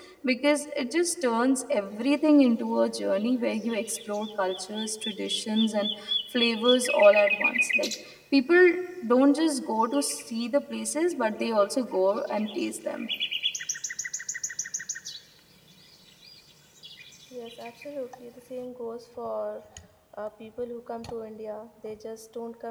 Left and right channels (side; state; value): both; identical; correlation 1.00